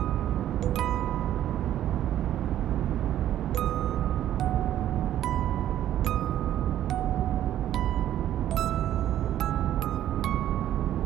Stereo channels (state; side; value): quieter; left; 11.9 dB